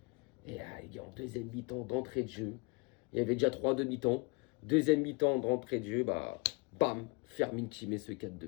Et les gars, en deuxième mi-temps d'entrée de jeu, il y avait déjà 3 demi-temps. Deuxième mi-temps d'entrée de jeu, bam, Fermin qui met ce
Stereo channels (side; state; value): right; quieter; 29.8 dB